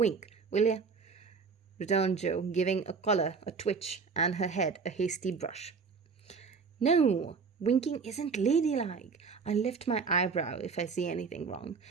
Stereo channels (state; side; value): quieter; left; 5.3 dB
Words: will you? Returned Joe, giving a collar a twitch and her head a hasty brush. No, winking isn't ladylike. I lift my eyebrow if I see anything wrong,